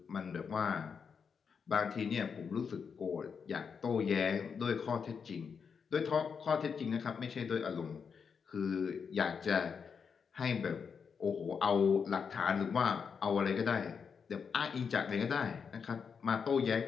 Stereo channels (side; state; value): right; quieter; 6.2 dB